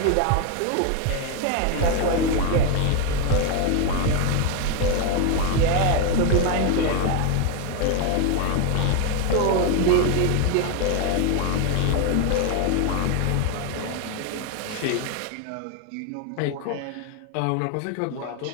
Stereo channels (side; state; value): both; different; correlation 0.01